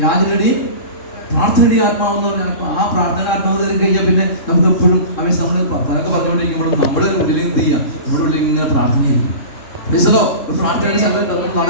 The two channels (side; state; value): right; late; 3.7 ms